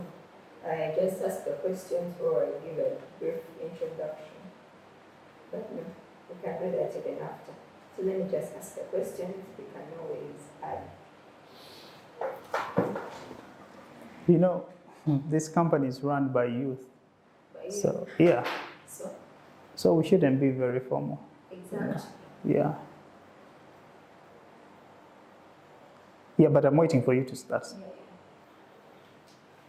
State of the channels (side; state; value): both; identical; correlation 1.00